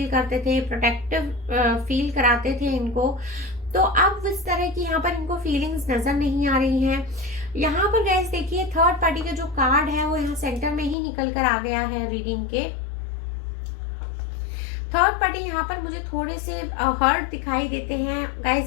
करते थे, प्रोटेक्टिव फील कराते थे इनको, तो अब इस तरह की यहाँ पर इनको फीलिंग्स नजर नहीं आ रही हैं। यहाँ पर गाइस देखिए, थर्ड पार्टी का जो कार्ड है वो यहाँ सेंटर में ही निकल कर आ गया है रीडिंग के। थर्ड पार्टी यहाँ पर मुझे थोड़े से हर्ट दिखाई देते हैं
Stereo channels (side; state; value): right; drops out; at 11.0 s